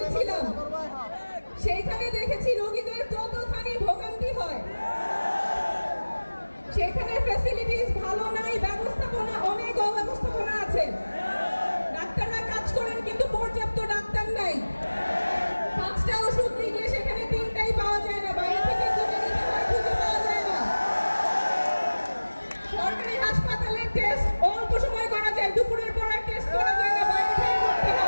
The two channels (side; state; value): both; inverted; correlation -1.00